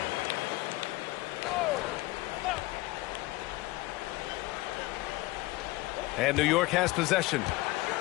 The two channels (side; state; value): right; quieter; 20.0 dB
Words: And New York has possession.